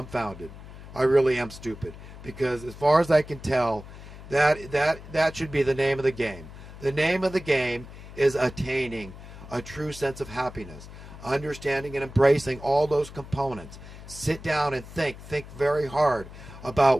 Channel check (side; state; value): left; noise; hum, 15 dB below the sound